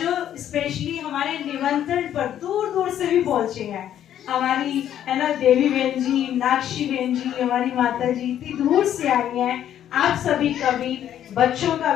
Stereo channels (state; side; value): quieter; right; 10.7 dB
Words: स्पेशली हमारे निमंत्रण पर दूर दूर से भी पहुंचे हैं, हमारी है ना देवी बहन जी, नाक्षी बहन जी, हमारी माता जी इतनी दूर से आई हैं। आप सभी का भी, बच्चों का